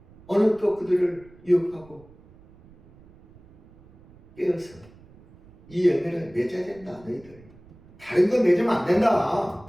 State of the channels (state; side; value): noise; right; rumble, 25 dB below the sound